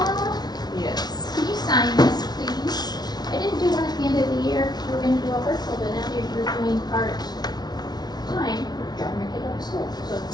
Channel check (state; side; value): late; right; 0.19 ms